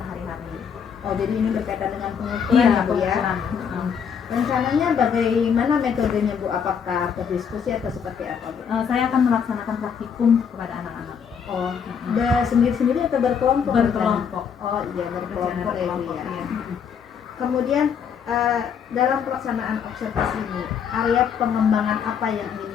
Oh, jadi ini berkaitan dengan pengukuran Iya, ya Bu ya. pengukuran. Rencananya bagaimana metodenya Bu? Apakah berdiskusi atau seperti apa Bu? Saya akan melaksanakan praktikum kepada anak-anak. Oh, sendiri-sendiri atau berkelompok? Berkelompok. Oh iya, berkelompok ya Bu ya. Iya. Kemudian dalam pelaksanaan observasi ini, area pengembangan apa yang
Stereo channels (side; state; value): right; quieter; 7.2 dB